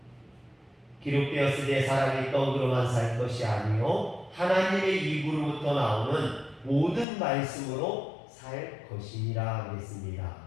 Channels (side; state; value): right; drops out; at 7.1 s